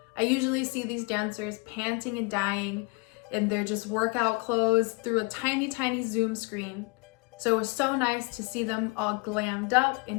I usually see these dancers panting and dying in their just workout clothes through a tiny, tiny Zoom screen. So it was so nice to see them all glammed up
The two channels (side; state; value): right; quieter; 30.3 dB